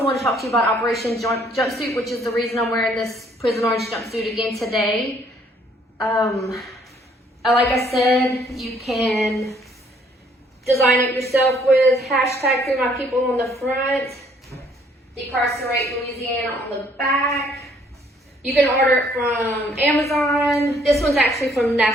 want to talk to you about Operation Jumpsuit, which is the reason I'm wearing this prison orange jumpsuit again today. Like I said, you can design it yourself with hashtag Free My People on the front, Decarcerate Louisiana on the back. You can order it from Amazon. This one's actually from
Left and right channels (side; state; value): both; normal; correlation 0.64